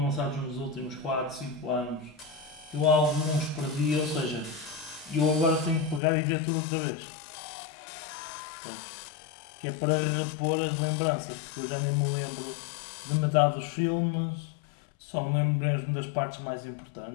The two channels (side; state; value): right; drops out; at 6.0 s